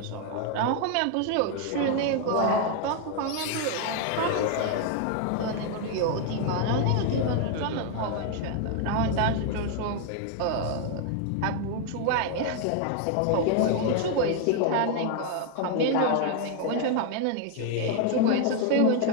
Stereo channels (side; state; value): both; different; correlation 0.00